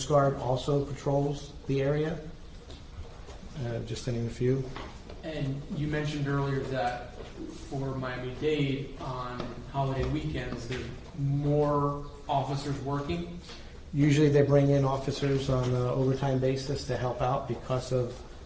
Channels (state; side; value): identical; both; correlation 1.00